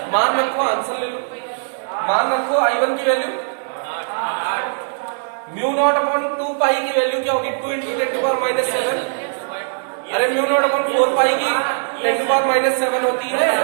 मान रखो, आंसर ले लो, मान रखो I1 की वैल्यू म्यू नॉट अपॉन 2 पाई की वैल्यू क्या होगी? 2 इंटू 10⁻⁷। अरे म्यू नॉट अपॉन 4 पाई की 10⁻⁷ होती है,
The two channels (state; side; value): silent; left; 66 dB below the other